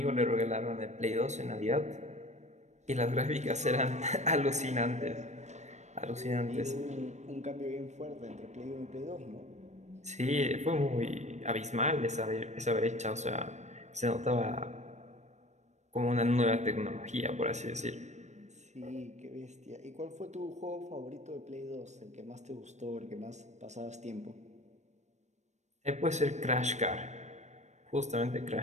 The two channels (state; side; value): late; left; 0.34 ms